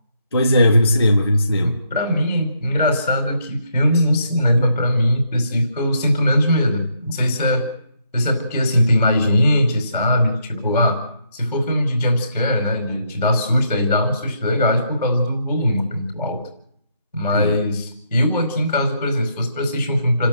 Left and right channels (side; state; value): both; inverted; correlation -0.75